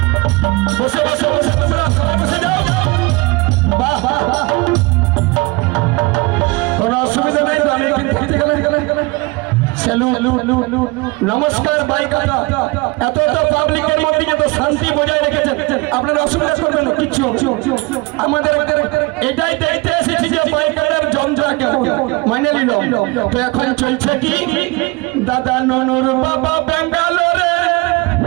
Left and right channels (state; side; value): quieter; left; 25.2 dB